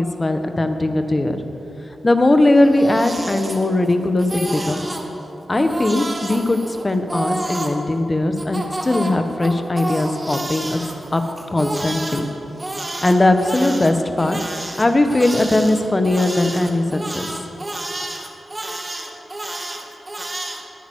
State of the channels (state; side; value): normal; both; correlation 0.95